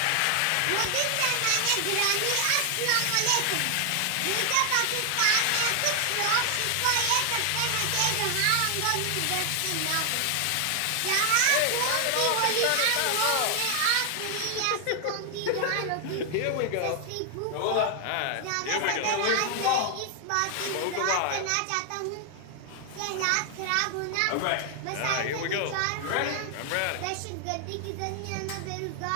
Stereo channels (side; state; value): both; different; correlation 0.00